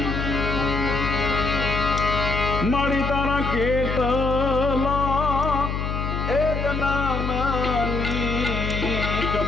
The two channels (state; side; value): noise; left; hum, 2 dB below the sound